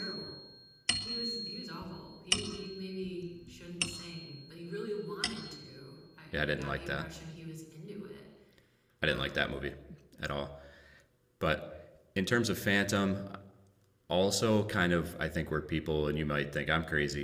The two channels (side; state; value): both; identical; correlation 1.00